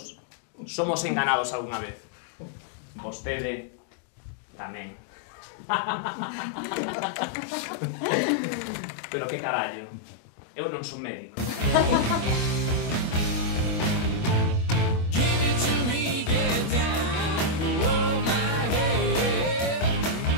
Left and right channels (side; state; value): right; late; 25 ms